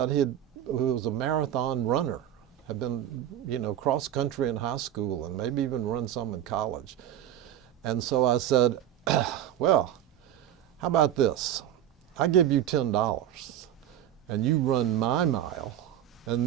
he was a marathon runner, had been, cross country in high school and maybe even run some in college. And so I said, well, how about this? I give you $10 and you run my mile and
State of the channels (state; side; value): quieter; left; 11.1 dB